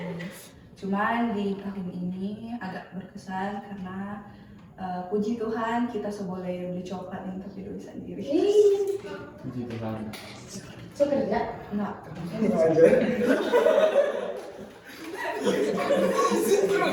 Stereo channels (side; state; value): both; identical; correlation 1.00